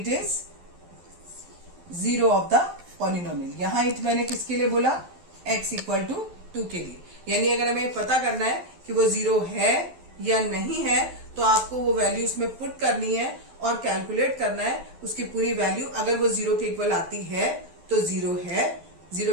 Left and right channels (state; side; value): late; left; 12 ms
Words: is zero of the polynomial. यहाँ इट मैंने किसके लिए बोला, x इक्वल टू 2 के लिए। यानी अगर हमें पता करना है कि वो जीरो है या नहीं है तो आपको वो वैल्यू उसमें पुट करनी है और कैलकुलेट करना है उसकी पूरी वैल्यू। अगर वो जीरो के इक्वल आती है तो जीरो है,